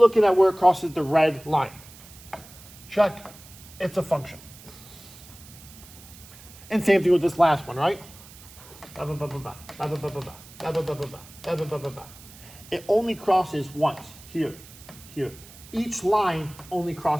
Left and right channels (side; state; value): right; noise; hiss, 20 dB below the sound